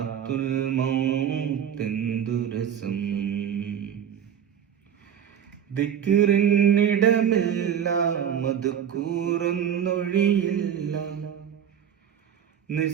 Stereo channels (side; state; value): left; quieter; 8.8 dB